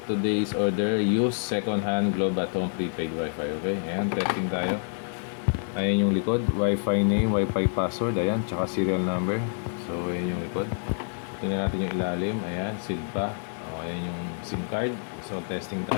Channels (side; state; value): right; silent; digital silence